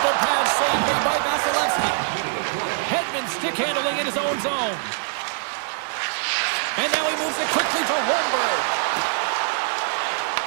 pad save made by Vasilevsky. Hedman stick handling in his own zone. And now he moves it quickly to Holmberg.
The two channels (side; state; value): left; silent; digital silence